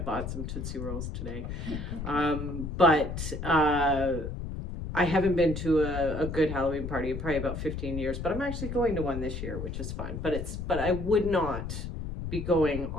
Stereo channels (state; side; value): noise; left; rumble, 6 dB below the sound